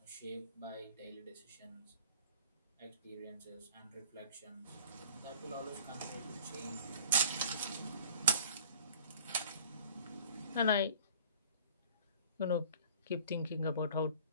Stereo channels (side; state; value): both; inverted; correlation -0.47